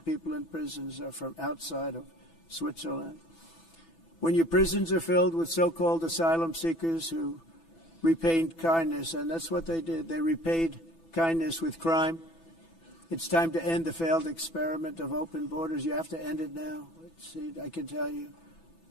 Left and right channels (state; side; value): late; right; 6.0 ms